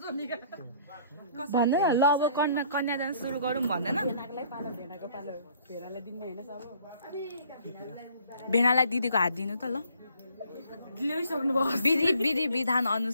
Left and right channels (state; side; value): inverted; both; correlation -0.59